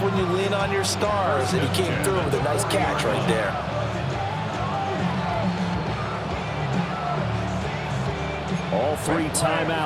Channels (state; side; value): identical; both; correlation 1.00